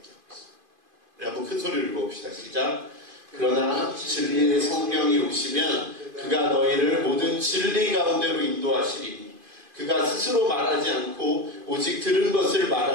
있어요. 한번 큰 소리를 읽어봅시다. 시작. 그러나 진리의 성령이 오시면 그가 너희를 모든 진리 가운데로 인도하시리니 그가 스스로 말하지 않고 오직 들은 것을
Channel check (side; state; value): left; late; 2.5 ms